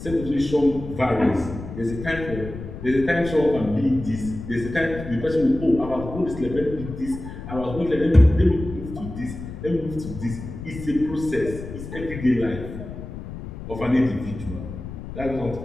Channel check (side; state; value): left; noise; rumble, 10 dB below the sound